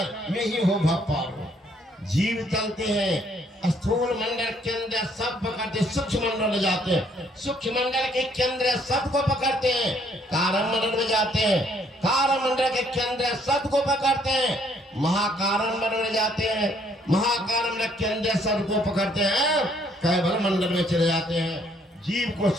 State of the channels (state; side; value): normal; both; correlation 0.66